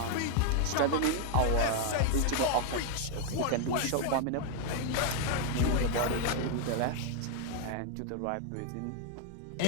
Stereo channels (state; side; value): different; both; correlation 0.00